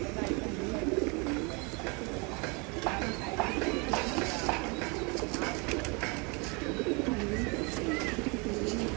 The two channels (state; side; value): quieter; left; 30.6 dB